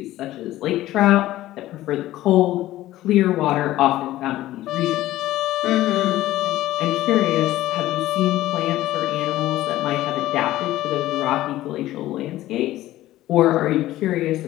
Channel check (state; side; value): quieter; right; 15.3 dB